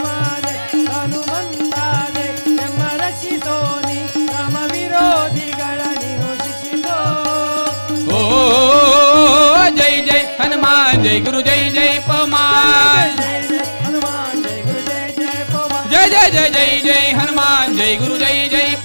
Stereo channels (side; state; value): both; inverted; correlation -1.00